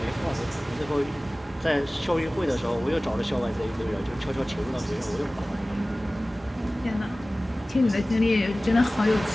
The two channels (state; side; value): normal; both; correlation 0.97